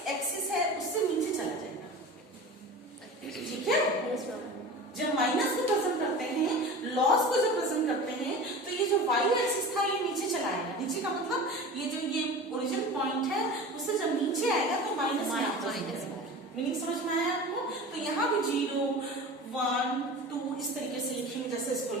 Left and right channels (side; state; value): both; normal; correlation 0.34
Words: एक्सिस है उससे नीचे चला जाएगा। ठीक है, जब माइनस को प्रेजेंट करते हैं, लॉस को जब प्रेजेंट करते हैं तो ये जो वाई एक्सिस था ये नीचे चला आएगा। नीचे का मतलब ये जो ये ओरिजिन पॉइंट है उससे जब नीचे आएगा तो माइनस मीनिंग समझ में आया आपको? तो यहाँ भी 0 1 2 इस तरीके से लिखेंगे जैसे इसको